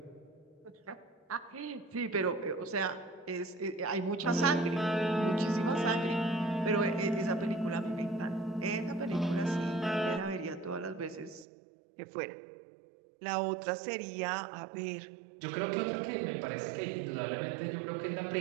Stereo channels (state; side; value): drops out; left; at 11.5 s